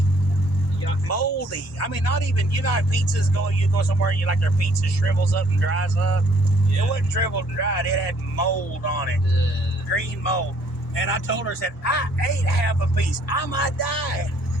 moldy. I mean, not even, you know how pizzas go, you go somewhere and you like their pizza shrivels up and dries up. Yeah. It wasn't shriveled and dried. It had mold on it. Green mold. And I told her, I said, I ate half a piece. I might die.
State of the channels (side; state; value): both; normal; correlation 0.63